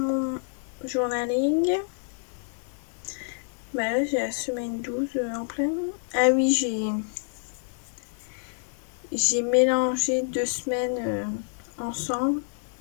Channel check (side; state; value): right; silent; 60 dB below the other